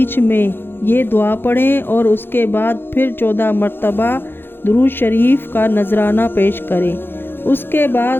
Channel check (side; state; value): right; late; 0.10 ms